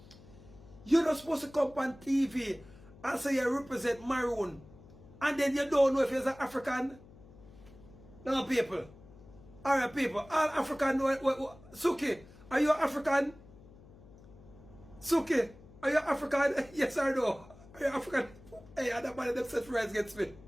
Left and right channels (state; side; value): noise; left; hum, 22 dB below the sound